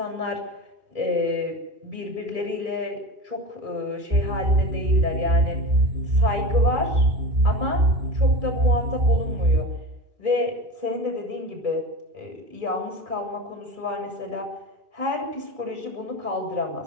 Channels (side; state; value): left; late; 2.3 ms